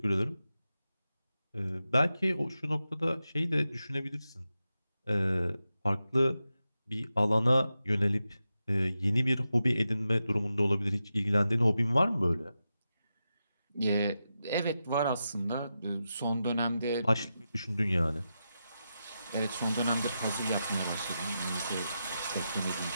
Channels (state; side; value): inverted; both; correlation -0.89